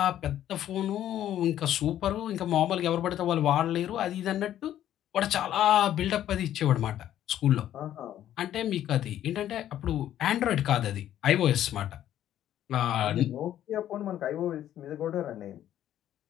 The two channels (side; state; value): right; quieter; 11.7 dB